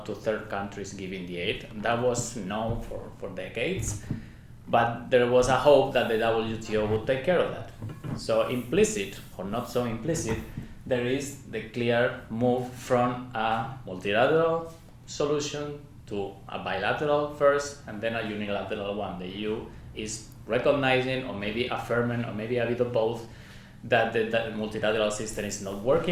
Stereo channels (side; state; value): both; identical; correlation 1.00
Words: to third countries giving the aid. That was known for decades. But there was a hope that the WTO would take care of that. So implicit, or not so implicit, there is the clear move from a multilateral solution to a bilateral first, and then a unilateral one. The EU is recognizing, or maybe affirming, or maybe a bit of both, that the multilateral system is not